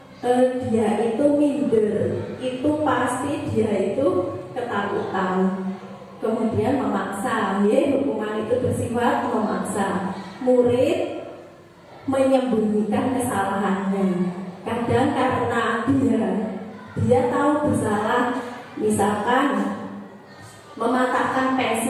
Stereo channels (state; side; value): identical; both; correlation 1.00